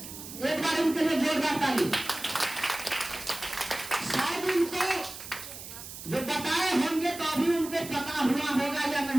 एक बार इनके लिए जोरदार ताली। शायद इनको जो बताए होंगे तो अभी उनको पता हुआ होगा या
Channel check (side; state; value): right; noise; hiss, 12 dB below the sound